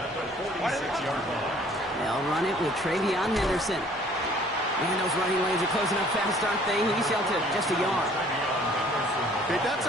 They'll run it with Travion Henderson. Man, those running lanes are closing up fast, aren't they? He's held to just a yard. Okay, that's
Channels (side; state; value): both; normal; correlation 0.56